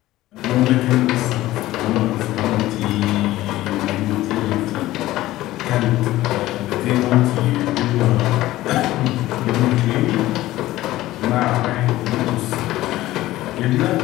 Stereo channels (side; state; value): right; quieter; 16.2 dB